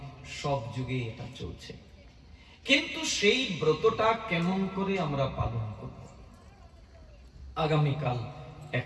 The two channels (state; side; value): identical; both; correlation 1.00